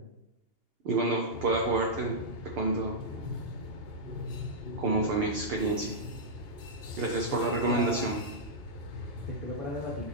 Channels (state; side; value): late; left; 2.8 ms